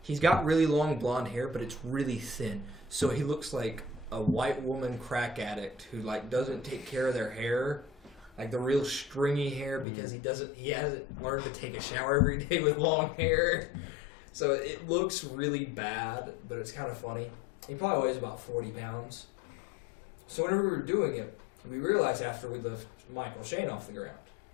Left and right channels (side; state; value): right; drops out; at 9.9 s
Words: He's got really long blonde hair, but it's really thin. So he looks like a white woman crack addict who doesn't take care of their hair. The real stringy hair because he hasn't learned to take a shower every day with long hair. So it looks really bad, but it's kind of funny. He probably weighs about 40 pounds. So whenever we were doing it, we realized after we lift Michael Shane off the ground